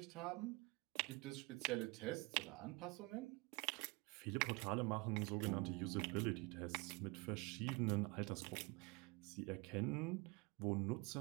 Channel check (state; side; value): quieter; left; 27.0 dB